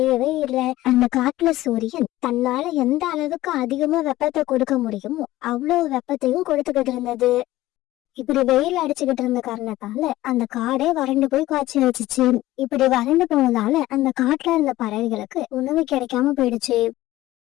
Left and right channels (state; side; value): quieter; right; 16.3 dB